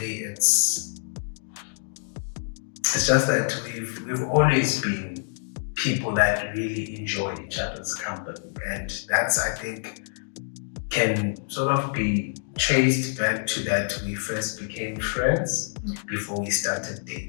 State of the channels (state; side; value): silent; right; digital silence